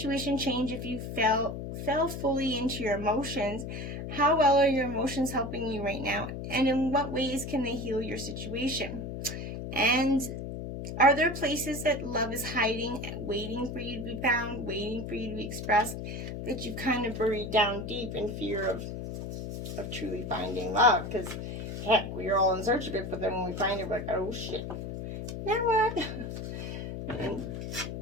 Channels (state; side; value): noise; left; hum, 6 dB below the sound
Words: change if you fell fully into your emotions? How well are your emotions helping you right now? And in what ways can they heal your situation? And are there places that love is hiding, waiting for you to be found, waiting for you to be expressed, that you've kind of buried down deep in fear of truly finding love? Because, heck, we are all in search of it, but then when we find it, we're like, oh, shit. Now what? And,